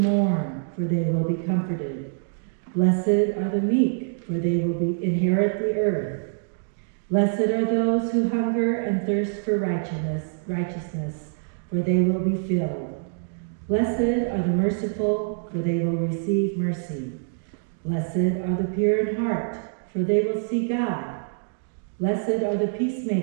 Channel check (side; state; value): left; silent; digital silence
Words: for they will be comforted. Blessed are the meek, for they will inherit the earth. Blessed are those who hunger and thirst for righteousness, for they will be filled. Blessed are the merciful, for they will receive mercy. Blessed are the pure in heart, for they will see God. Blessed are the